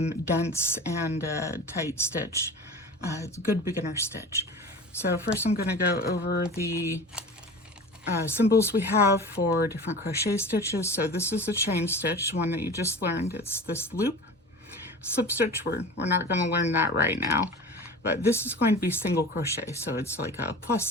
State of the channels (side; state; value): both; normal; correlation 0.36